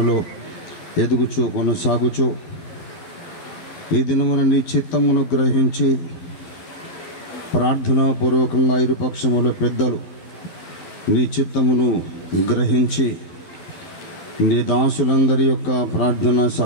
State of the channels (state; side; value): late; right; 12 ms